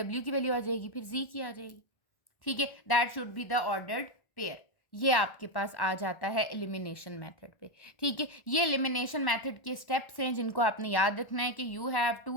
की वैल्यू आ जाएगी, फिर Z की आ जाएगी। ठीक है, that should be the ordered pair. ये आपके पास आ जाता है एलिमिनेशन मेथड पे। ठीक है, ये एलिमिनेशन मेथड के स्टेप्स हैं जिनको आपने याद रखना है कि you have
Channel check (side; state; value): right; late; 1.1 ms